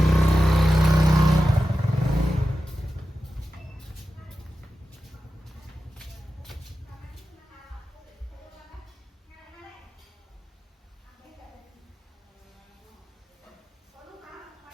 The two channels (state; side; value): normal; both; correlation 0.93